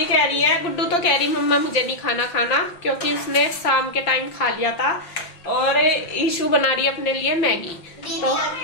कह रही है गुड्डू, तो कह रही मम्मा मुझे नहीं खाना, क्योंकि इसने शाम के टाइम खा लिया था। और ईशू बना रही है अपने लिए मैगी, तो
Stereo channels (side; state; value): right; late; 5.8 ms